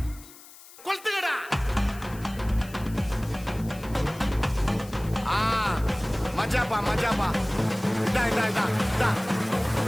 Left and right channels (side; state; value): left; noise; hiss, 20 dB below the sound